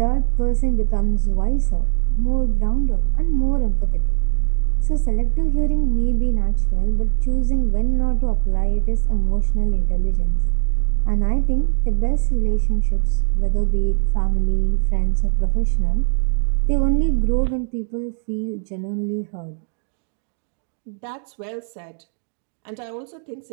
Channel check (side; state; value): left; silent; digital silence